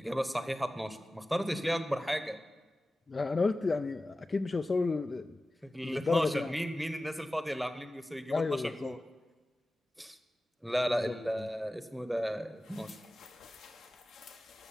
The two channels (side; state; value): both; normal; correlation 0.96